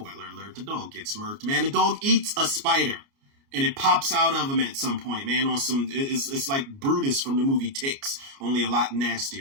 alert, the dog gets murked, man. The dog eats a spider, and it pops out of him at some point, man. On some, it's like Brutus from the movie Ticks, only a lot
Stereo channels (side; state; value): left; late; 29 ms